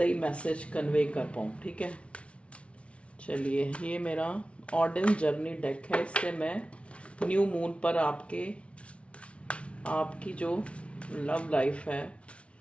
मैसेज कन्वे कर पाऊँ, ठीक है। चलिए, ये मेरा ऑर्डन जर्नी डेक है। इससे मैं न्यू मून पर आपकी जो लव लाइफ है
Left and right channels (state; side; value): late; right; 0.061 ms